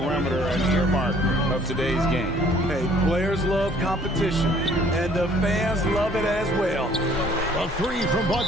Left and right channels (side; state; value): both; normal; correlation 0.58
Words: an earmark of today's game. Hey, players love competition, and the fans love it as well. A 3 from